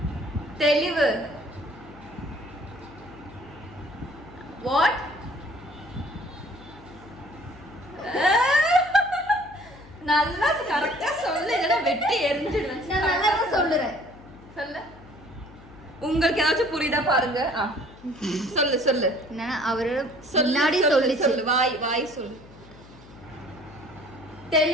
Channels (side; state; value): left; noise; hum, 21 dB below the sound